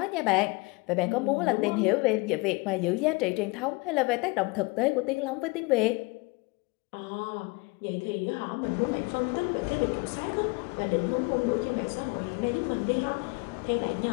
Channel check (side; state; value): right; quieter; 26.4 dB